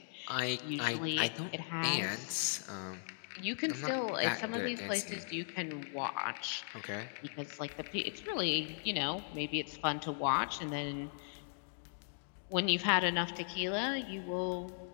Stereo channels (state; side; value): silent; right; digital silence